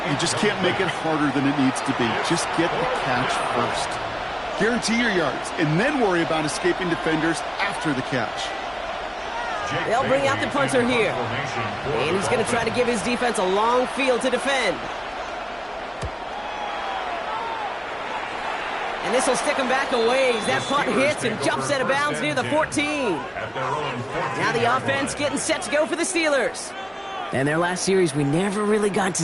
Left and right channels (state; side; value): identical; both; correlation 1.00